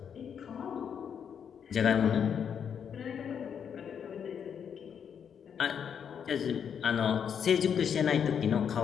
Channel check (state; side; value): quieter; right; 7.7 dB